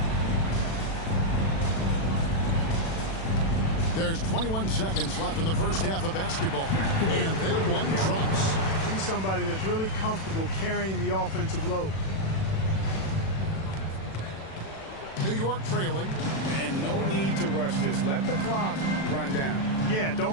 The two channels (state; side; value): late; right; 36 ms